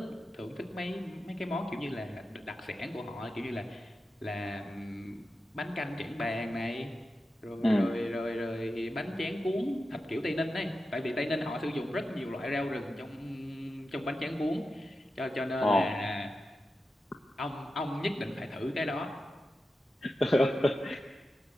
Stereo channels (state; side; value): normal; both; correlation 0.91